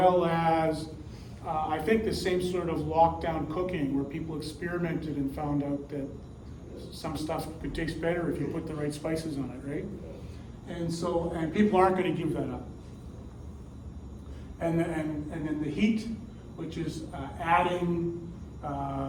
as I think the same sort of lockdown cooking where people experimented and found out that some stuff could taste better if you put the right spices on it, right? And people aren't going to give that up. And then the heat, which is adding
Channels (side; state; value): both; identical; correlation 1.00